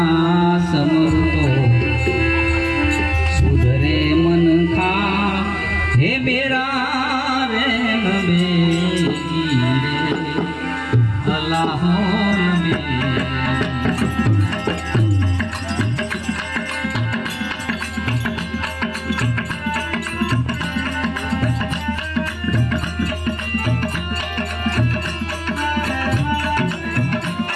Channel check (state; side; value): identical; both; correlation 1.00